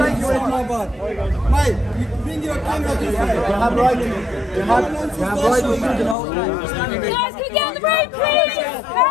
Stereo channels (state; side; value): drops out; right; at 6.2 s